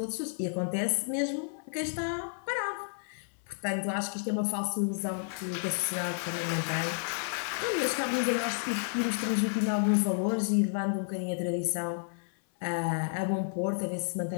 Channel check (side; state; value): right; silent; 57 dB below the other